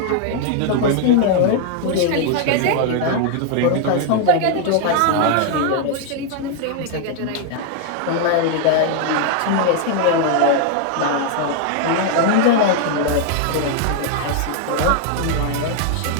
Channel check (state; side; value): different; both; correlation 0.00